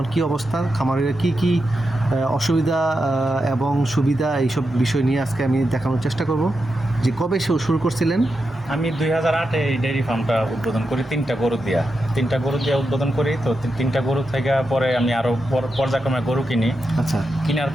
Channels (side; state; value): both; normal; correlation 0.87